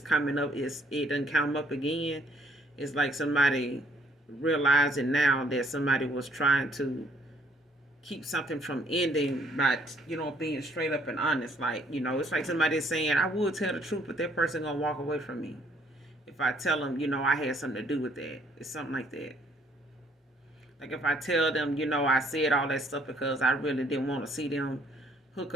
coming up, it doesn't come up again. It's like somebody realizing now that somebody was trying to keep something from ending by, being straight up and honest. Like, it's like somebody saying, I would tell the truth, but that person gonna walk away from me if I tell them, I had something to do with that. It's something like that. Like if I tell them, I said all that stuff because I really didn't want to see them hook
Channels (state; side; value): normal; both; correlation 0.65